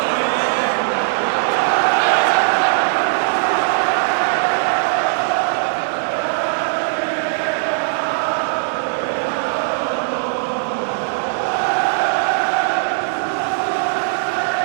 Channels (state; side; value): silent; left; digital silence